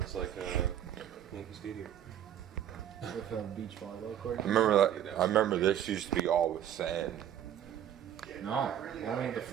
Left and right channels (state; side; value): quieter; left; 10.4 dB